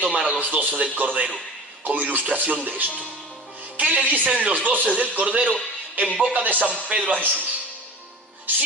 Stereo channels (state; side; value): normal; both; correlation 0.36